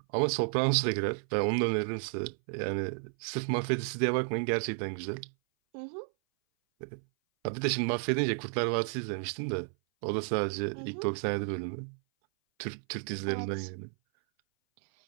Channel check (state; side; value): silent; left; 56 dB below the other